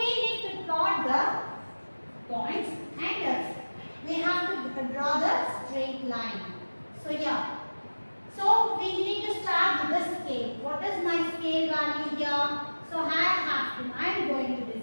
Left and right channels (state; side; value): inverted; both; correlation -1.00